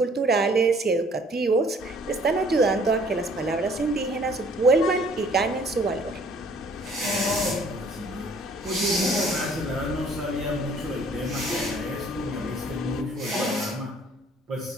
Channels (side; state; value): both; normal; correlation 0.58